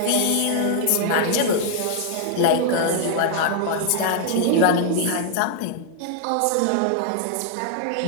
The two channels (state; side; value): different; both; correlation 0.00